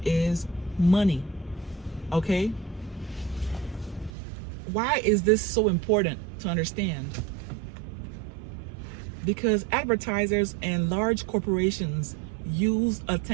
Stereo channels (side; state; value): left; drops out; at 4.1 s